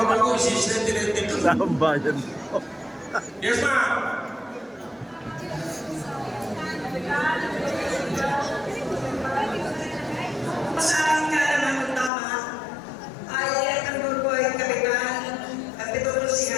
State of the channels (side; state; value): right; drops out; at 12.1 s